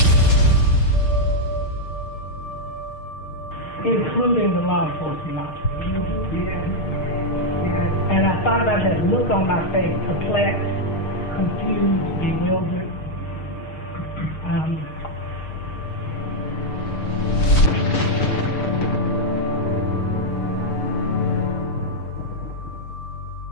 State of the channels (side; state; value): right; late; 6.5 ms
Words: Including the law enforcement officers. And I thought about that look on my face, perplexed, confused, bewildered. And